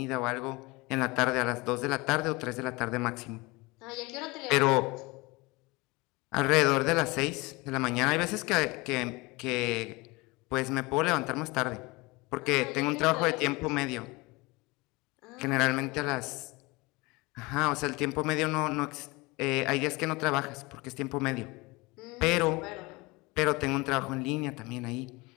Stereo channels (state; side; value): quieter; right; 24.1 dB